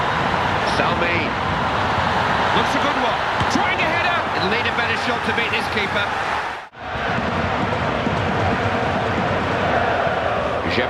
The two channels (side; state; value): both; identical; correlation 1.00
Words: Salmi. Looks a good one. Trying a header. It'll need a better shot to beat this keeper.